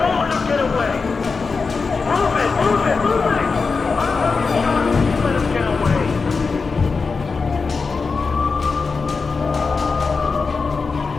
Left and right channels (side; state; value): right; quieter; 4.7 dB